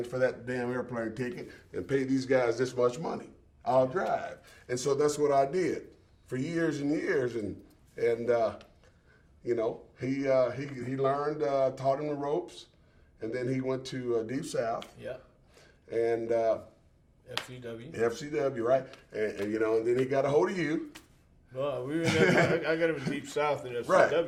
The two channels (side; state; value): both; identical; correlation 1.00